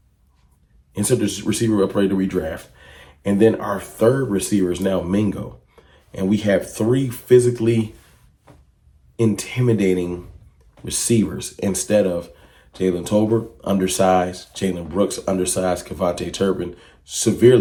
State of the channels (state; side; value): identical; both; correlation 1.00